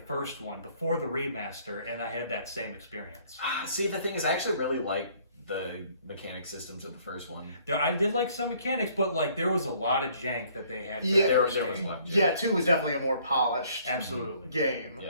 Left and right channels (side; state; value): both; inverted; correlation -0.61